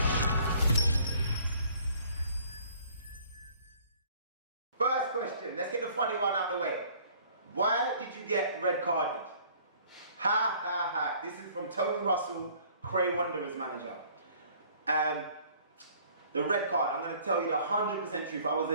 First question, let's get the funny one out of the way. Why did you get red carded? Ha ha ha. This is from Tony Russell, Cray Wanderers manager. The red card, I'm going to tell you the 100% truth. I was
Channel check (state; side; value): inverted; both; correlation -0.56